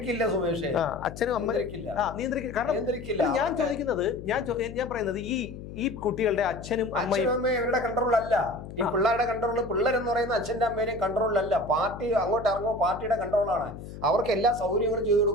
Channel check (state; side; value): noise; left; hum, 12 dB below the sound